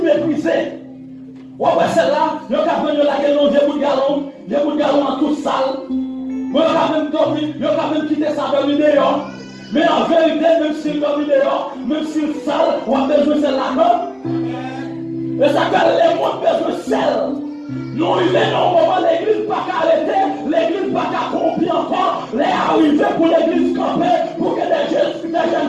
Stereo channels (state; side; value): identical; both; correlation 1.00